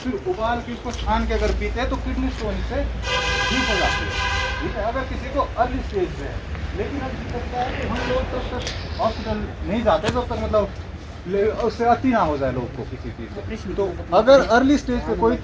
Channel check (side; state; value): both; identical; correlation 1.00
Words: उबाल के इसको छान के अगर पीते हैं तो किडनी स्टोन इससे ठीक हो जाती है। ठीक है, अगर किसी को अर्ली स्टेज पे है। लेकिन अब दिक्कत क्या है कि हम लोग तब तक हॉस्पिटल नहीं जाते जब तक मतलब उससे अति ना हो जाए लोग को किसी चीज़ से। तो अगर अर्ली स्टेज पे कोई